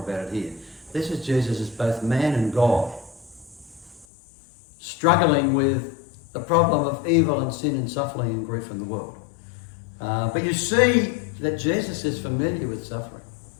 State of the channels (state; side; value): drops out; right; at 4.0 s